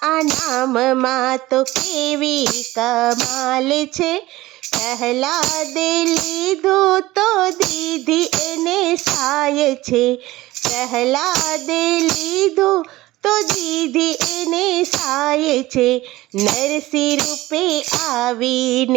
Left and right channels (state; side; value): quieter; left; 18.0 dB